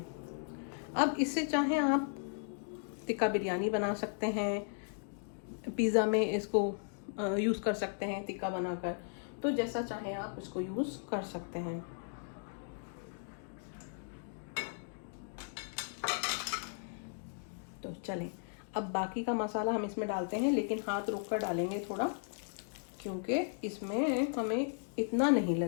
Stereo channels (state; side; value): silent; right; digital silence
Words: अब इससे चाहे आप टिक्का बिरयानी बना सकते हैं, पिज़्ज़ा में इसको यूज़ कर सकते हैं टिक्का बनाकर, तो जैसा चाहे आप इसको यूज़ कर सकते हैं। तो चलें, अब बाकी का मसाला हम इसमें डालते हैं, लेकिन हाथ रोक कर डालेंगे थोड़ा, क्योंकि इसमें हमें इतना नहीं